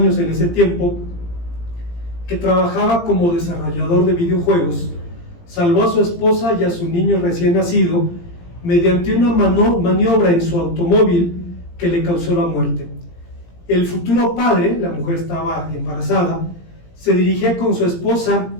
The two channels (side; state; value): right; late; 17 ms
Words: en ese tiempo, que trabajaba como desarrollador de videojuegos, salvó a su esposa y a su niño recién nacido mediante una maniobra en su automóvil que le causó la muerte. El futuro padre, la mujer estaba embarazada, se dirigía con su esposa